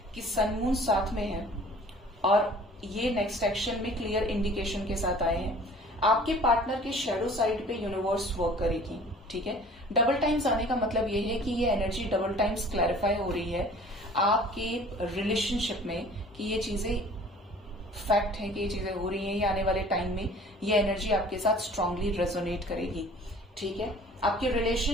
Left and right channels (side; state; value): both; normal; correlation 0.49